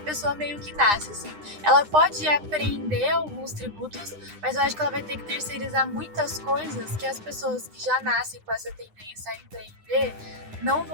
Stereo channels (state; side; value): late; left; 9.8 ms